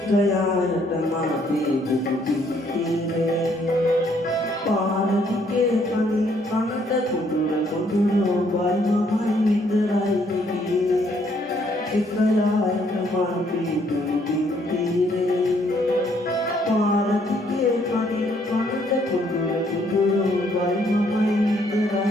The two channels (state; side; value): normal; both; correlation 0.68